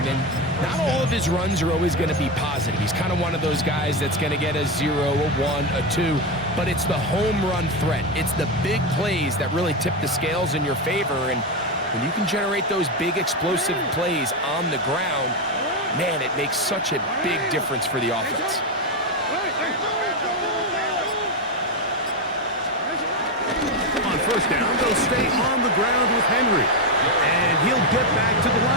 And not all of his runs are always going to be positive. He's kind of one of those guys that's going to get a 0, a 1, a 2. But it's the home run threat. It's the big plays that really tip the scales in your favor. And when you can generate those big explosive plays on the ground, man, it makes such a big difference for the offense. On first down, they'll stay on the ground with Henry. And he'll get back to the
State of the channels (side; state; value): both; normal; correlation 0.11